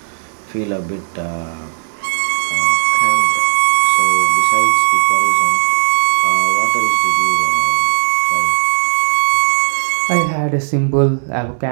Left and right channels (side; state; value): left; silent; digital silence